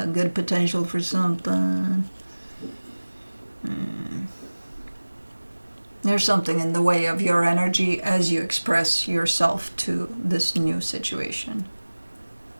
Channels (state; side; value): inverted; both; correlation -1.00